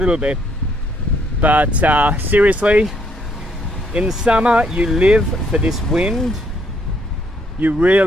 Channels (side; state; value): both; normal; correlation 0.70